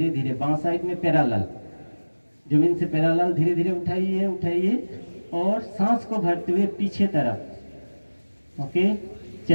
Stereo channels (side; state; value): both; inverted; correlation -1.00